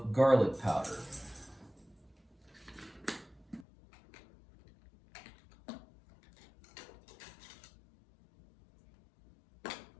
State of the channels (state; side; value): drops out; right; at 3.7 s